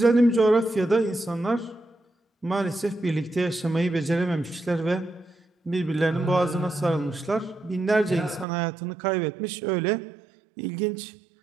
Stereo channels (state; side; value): drops out; left; at 8.5 s